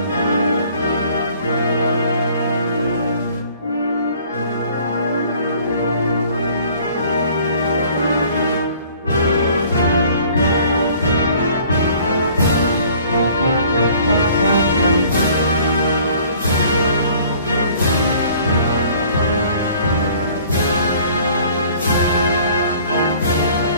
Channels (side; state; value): both; inverted; correlation -0.54